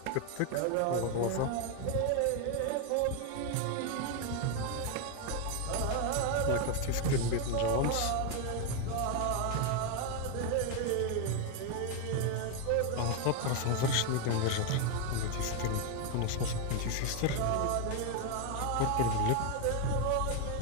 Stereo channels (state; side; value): different; both; correlation 0.01